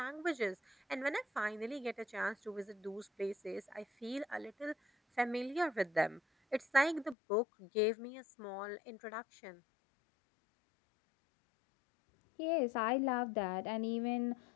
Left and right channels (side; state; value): right; drops out; at 7.2 s